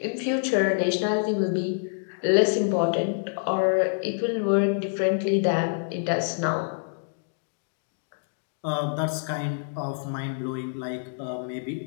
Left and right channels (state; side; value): silent; right; digital silence